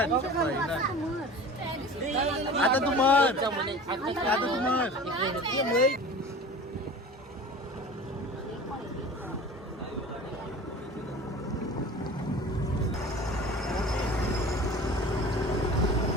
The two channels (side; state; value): both; normal; correlation 0.39